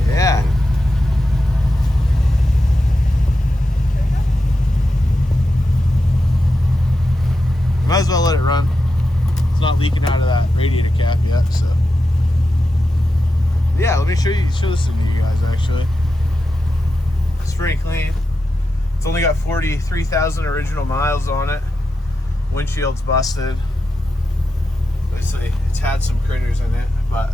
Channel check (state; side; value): normal; both; correlation 0.89